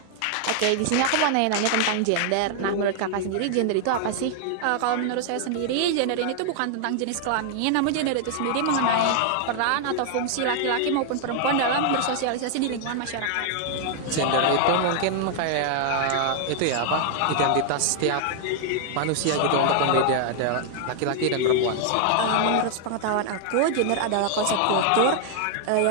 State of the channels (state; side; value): different; both; correlation 0.00